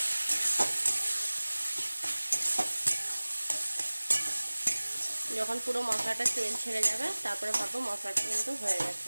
যখন পুরো মশলাটা তেল ছেড়ে যাবে তারপরে ভাববো মশলাটা কিন্তু হয়ে গেছে।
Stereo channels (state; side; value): inverted; both; correlation -1.00